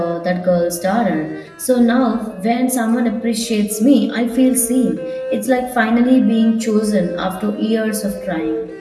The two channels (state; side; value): identical; both; correlation 1.00